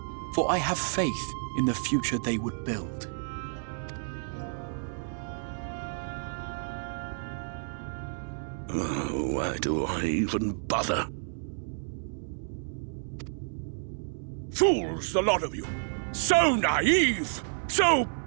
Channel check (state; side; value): silent; left; 58 dB below the other